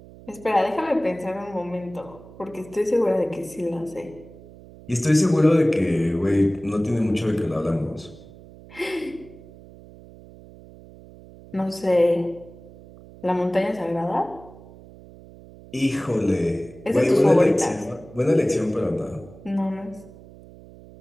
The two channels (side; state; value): right; noise; hum, 20 dB below the sound